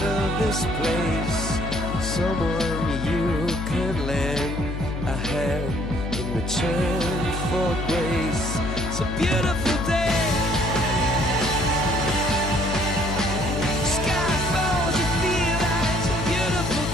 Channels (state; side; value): noise; left; hum, 5 dB below the sound